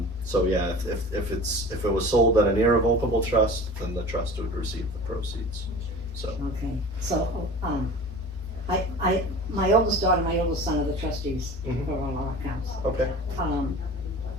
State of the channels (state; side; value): normal; both; correlation 0.39